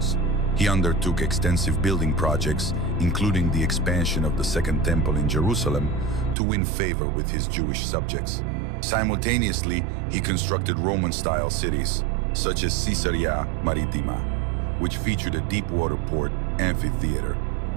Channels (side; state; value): left; drops out; at 6.4 s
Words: He undertook extensive building projects, including the expansion of the Second Temple in Jerusalem, to win favor with his Jewish subjects. Simultaneously, he constructed Roman-style cities, such as Caesarea Maritima, which featured a deep-water port, amphitheater,